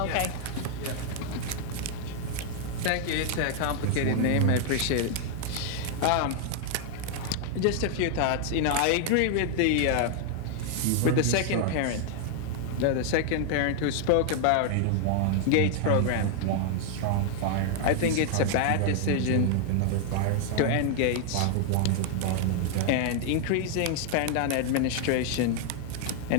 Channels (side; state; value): both; different; correlation 0.00